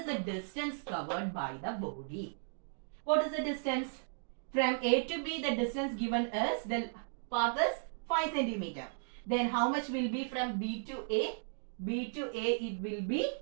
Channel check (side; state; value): left; silent; digital silence